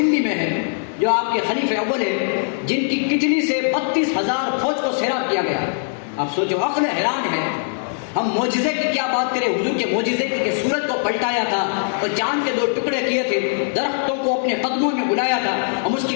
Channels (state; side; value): silent; right; 65 dB below the other